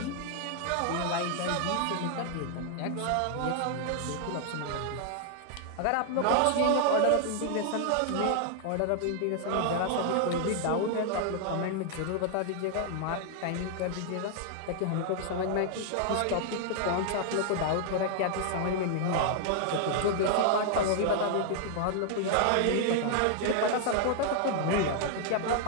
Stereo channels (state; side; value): different; both; correlation 0.00